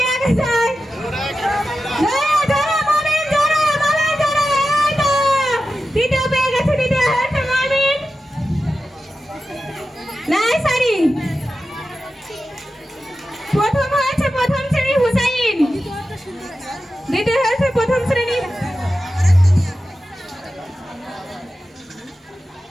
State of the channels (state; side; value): normal; both; correlation 0.92